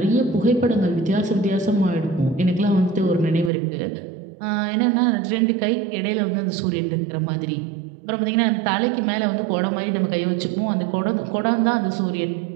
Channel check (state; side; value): drops out; left; at 3.5 s